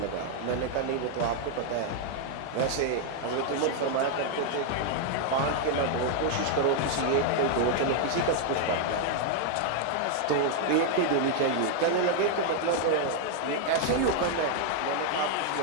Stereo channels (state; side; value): different; both; correlation 0.00